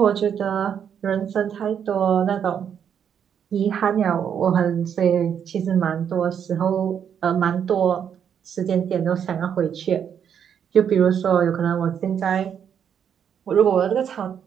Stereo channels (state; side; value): quieter; left; 8.2 dB